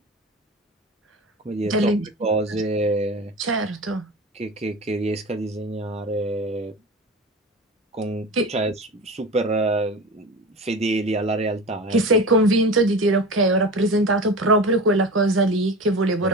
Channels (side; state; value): both; normal; correlation 0.31